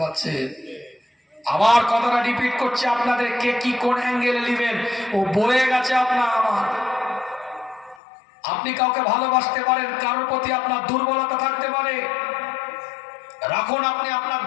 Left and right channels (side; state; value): right; drops out; at 8.0 s